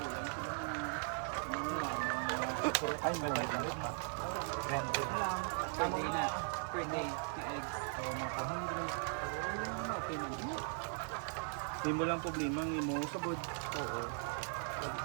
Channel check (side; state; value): left; silent; 52 dB below the other